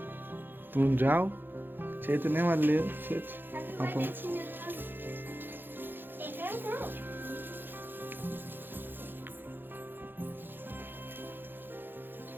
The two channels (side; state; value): left; late; 0.097 ms